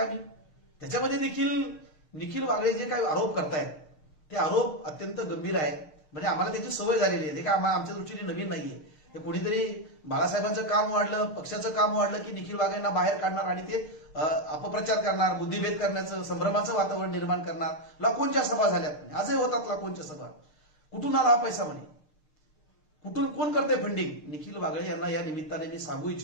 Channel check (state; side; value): late; right; 6.6 ms